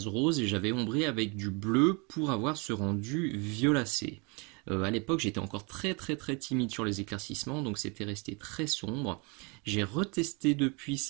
rose et j'avais ombré avec du bleu pour avoir ce rendu violacé. À l'époque, j'étais encore très timide sur les éclaircissements, donc c'était resté très sombre. J'ai retesté depuis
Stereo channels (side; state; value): left; quieter; 30.4 dB